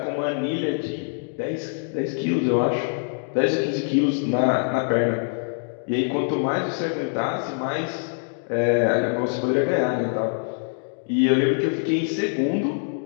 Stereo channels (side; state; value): right; silent; digital silence